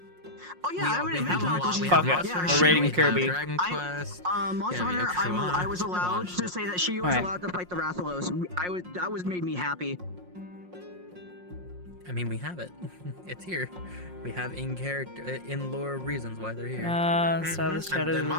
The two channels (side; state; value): left; late; 5.6 ms